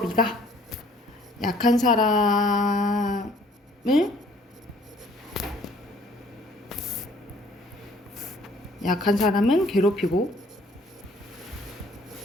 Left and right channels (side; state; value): both; normal; correlation 0.58